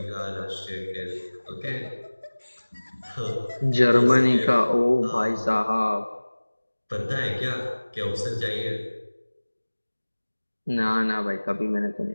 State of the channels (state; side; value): inverted; both; correlation -1.00